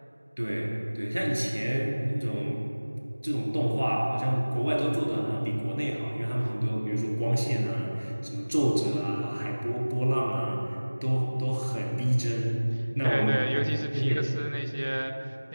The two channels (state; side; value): inverted; both; correlation -1.00